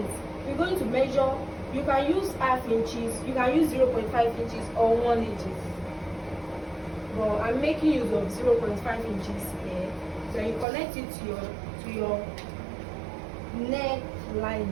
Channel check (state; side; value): drops out; left; at 10.7 s